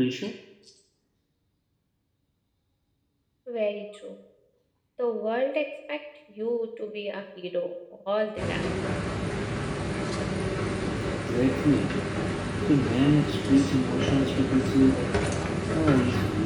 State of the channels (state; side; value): identical; both; correlation 1.00